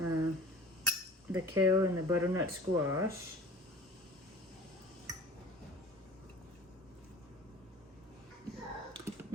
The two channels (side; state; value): both; normal; correlation 0.43